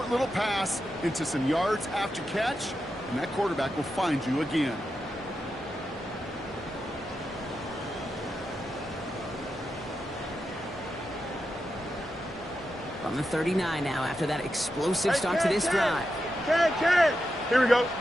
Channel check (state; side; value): normal; both; correlation 0.88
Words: little pass into some yards after catch, and that quarterback will find you again. From the 39 now after that explosive start to this drive. Can. Here we go.